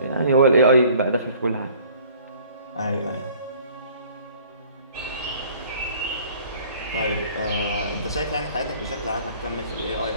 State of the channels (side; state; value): both; inverted; correlation -0.54